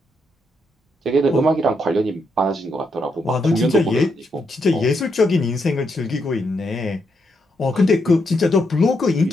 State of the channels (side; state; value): both; normal; correlation 0.80